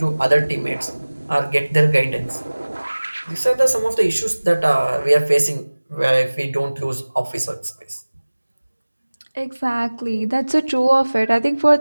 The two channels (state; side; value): inverted; both; correlation -1.00